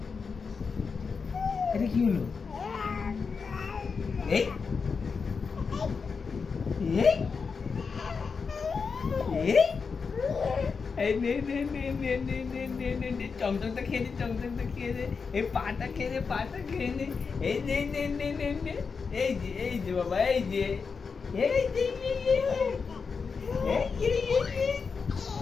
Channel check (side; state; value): right; quieter; 5.3 dB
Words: এটা কি হলো এই এই এই নে নে নে নে নে নে নে নে নে চমচমটা খেয়ে নে চমচমটা খেয়ে নে এই পাটা খেয়ে নে পাটা খেয়ে নে এই নে নে নে নে নে এই যে বাবা এই যে এই যে